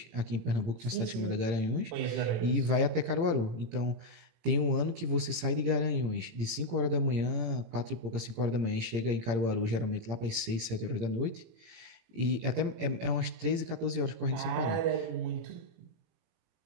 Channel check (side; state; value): left; late; 17 ms